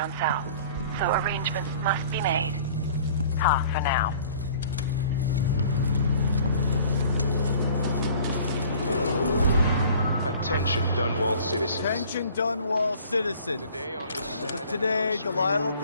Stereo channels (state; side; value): inverted; both; correlation -0.50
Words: south. So arrangements must be made. Ha, for now. Attention, Dunwall citizens. Attention, Dunwall citizens. As of today, Delilah